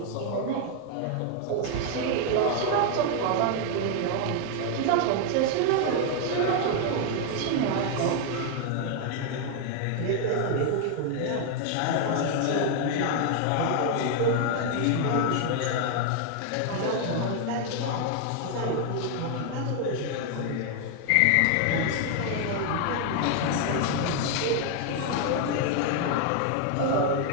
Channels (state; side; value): different; both; correlation 0.00